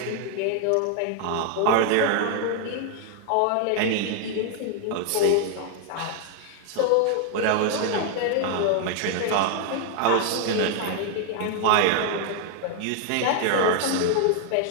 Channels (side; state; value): both; different; correlation 0.00